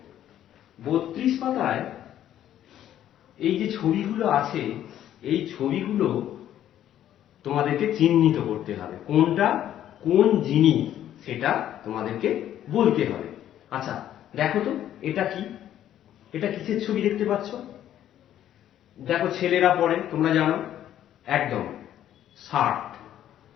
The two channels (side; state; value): right; quieter; 11.4 dB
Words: 32 পাতায় এই যে ছবিগুলো আছে, এই ছবিগুলো তোমাদেরকে চিহ্নিত করতে হবে, কোনটা কোন জিনিস সেটা তোমাদেরকে বলতে হবে। আচ্ছা, দেখো তো এটা কি? এটা কিসের ছবি দেখতে পাচ্ছ? দেখো, ছেলেরা পরে, তোমরা জানো একদম, শার্ট।